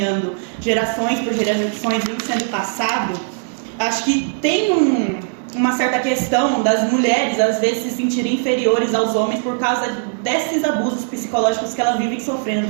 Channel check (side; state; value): left; silent; digital silence